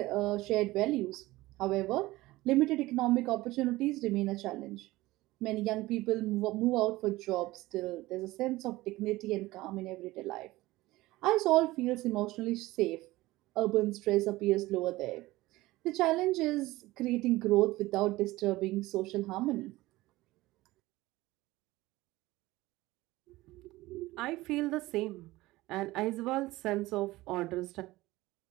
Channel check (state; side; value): quieter; left; 18.7 dB